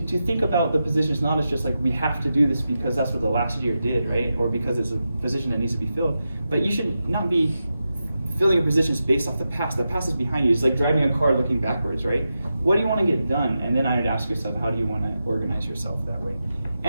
think about the positions not as just like we have to do this because that's what the last year did, right? Or because it's a position that needs to be filled. But you should not be filling your positions based off the past. The past is behind you. It's like driving a car looking backwards, right? What do you want to get done? And then I would ask yourself, how do you want to organize yourself that way?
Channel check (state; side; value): inverted; both; correlation -0.90